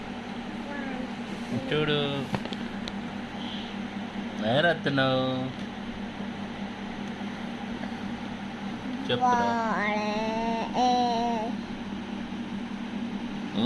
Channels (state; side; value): identical; both; correlation 1.00